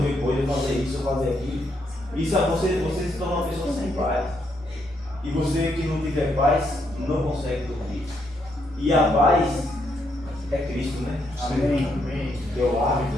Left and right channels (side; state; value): both; normal; correlation 0.76